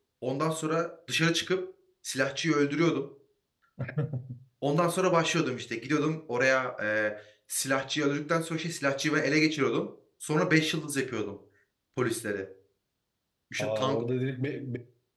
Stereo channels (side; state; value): both; identical; correlation 1.00